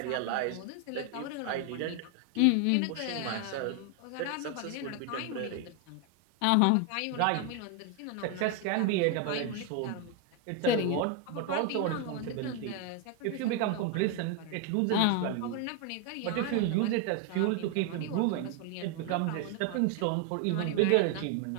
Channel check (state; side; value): different; both; correlation 0.01